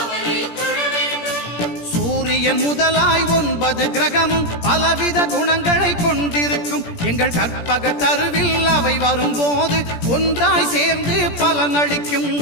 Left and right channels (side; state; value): right; late; 17 ms